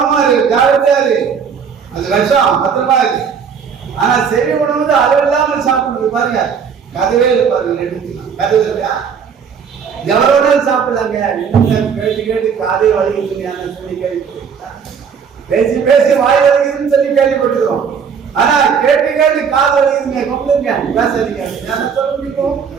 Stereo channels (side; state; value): left; quieter; 6.7 dB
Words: இருக்கு, ஜாகிரதையா இருக்கு. அது விஷம், பத்திரமா இருக்கு. ஆனா செவி உணவு அது இல்லாம சாப்பிடுறது பாருங்க, கதவே பாருங்க, எடுத்துக்கலாம். கதவு இருக்கா? எவ்வளவு சாப்பிடலாங்க. கேட்டு கேட்டு காதே வலிக்குதுங்க சொல்லி கேள்விப்பட்டிருக்கா? பேசி பேசி வாய் வலிக்குதுன்னு சொல்லி கேள்விப்பட்டிருக்கோம். ஆனா கேட்டு கேட்டு காது வலிக்குதுங்க, கொண்டுங்க பேசாதீங்க. என்ன சொல்ல முடியும்?